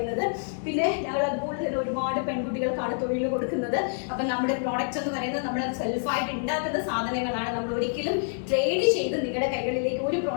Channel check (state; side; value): silent; right; digital silence